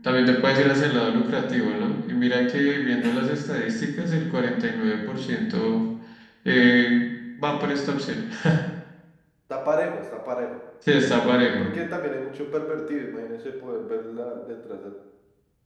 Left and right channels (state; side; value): identical; both; correlation 1.00